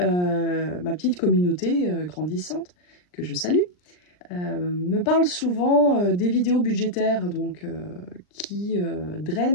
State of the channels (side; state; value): right; late; 39 ms